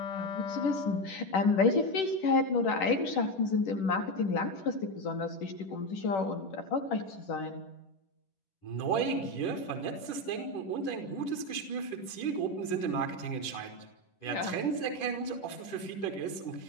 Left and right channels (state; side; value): late; right; 10 ms